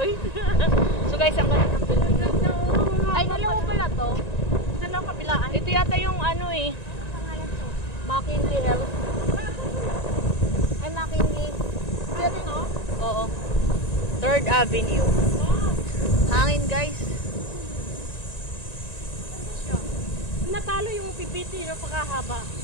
So guys, ang ganda ng building na to. Ay, dalawa pala to. Dalawa kabilaan. Ito yata yung ano eh. Pangalan to? McKinley Health. Ay, McKinley. Ano to? Oo. 3rd Avenue. Hangin guys. Natalo yung pipiti no, pagkahaba.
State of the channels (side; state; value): right; late; 1.9 ms